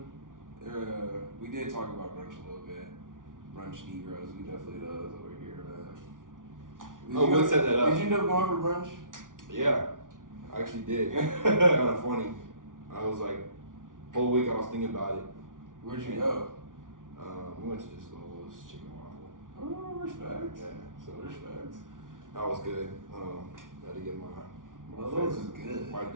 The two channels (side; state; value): left; late; 0.88 ms